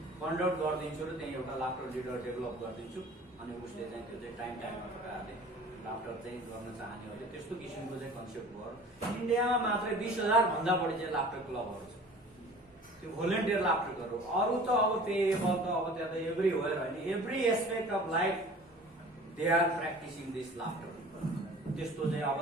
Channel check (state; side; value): normal; both; correlation 0.44